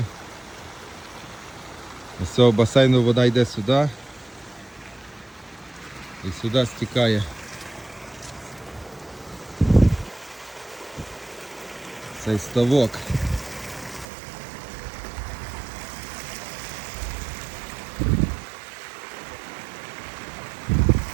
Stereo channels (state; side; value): drops out; left; at 14.1 s